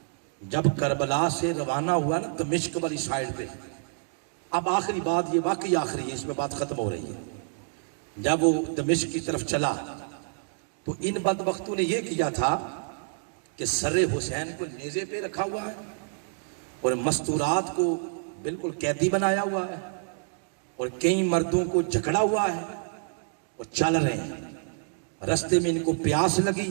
جب کربلا سے روانہ ہوا نا دمشق والی سائیڈ پہ، اب آخری بات، یہ واقعی آخری ہے، اس میں بات ختم ہو رہی ہے، جب وہ دمشق کی طرف چلا تو ان بدبختوں نے یہ کیا تھا کہ سر حسین کو نیزے پہ رکھا ہوا ہے اور مستورات کو بالکل قیدی بنایا ہوا ہے، اور کئی مردوں کو جکڑا ہوا ہے اور چل رہے ہیں۔ رستے میں ان کو پیاس لگی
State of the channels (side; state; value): left; silent; 59 dB below the other